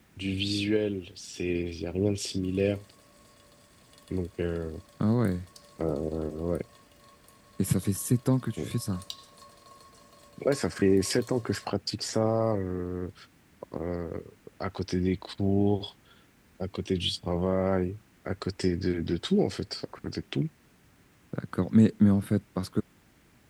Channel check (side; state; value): both; identical; correlation 1.00